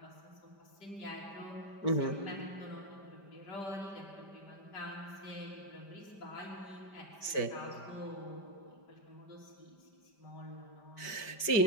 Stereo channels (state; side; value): late; right; 5.1 ms